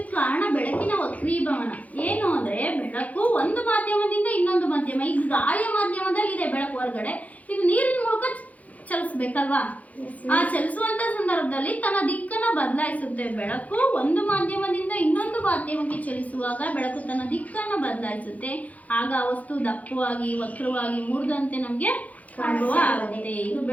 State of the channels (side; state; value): right; late; 0.072 ms